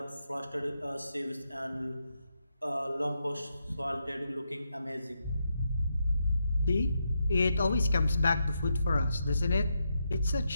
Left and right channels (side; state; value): both; inverted; correlation -0.83